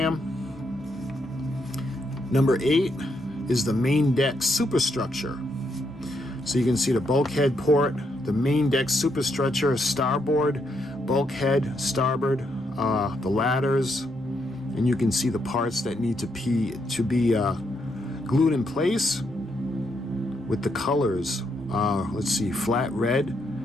Number 8 is the main deck superstructure. So you can see the bulkhead port, the main deck superstructure, starboard, bulkhead, starboard, the ladders, and you can see the parts that need to be glued in place with the colors. Let's see, flat red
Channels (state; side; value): normal; both; correlation 0.78